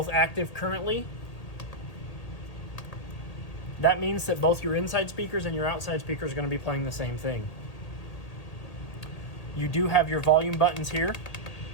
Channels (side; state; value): right; late; 1.8 ms